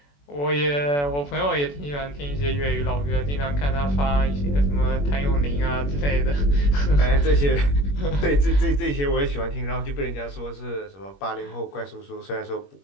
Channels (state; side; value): late; right; 21 ms